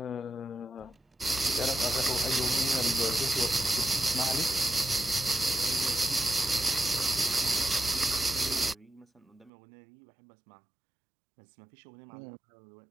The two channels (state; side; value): drops out; left; at 9.5 s